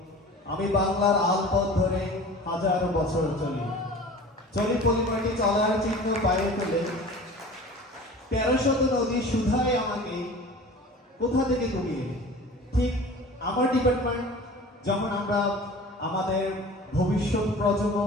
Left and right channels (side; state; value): both; normal; correlation 0.40